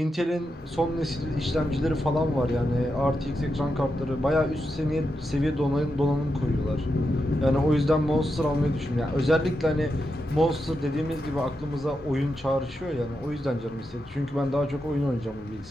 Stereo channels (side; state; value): both; normal; correlation 0.86